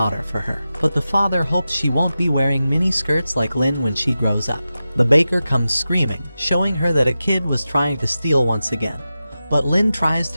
for her, but the father hopes she won't be wearing mini skirts like Lin when she grows up. The baker comes screaming, showing her that a kid was trying to steal once again. But Lin tries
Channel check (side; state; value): both; inverted; correlation -0.93